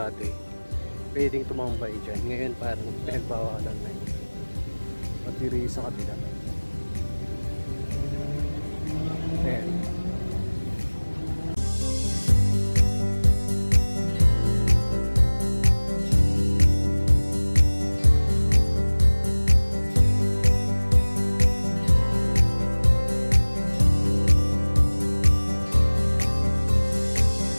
pwedeng tumambay dyan. Ngayon parang pinagbawalan na yun. At diri sa kabila. Ayan.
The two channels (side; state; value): both; inverted; correlation -1.00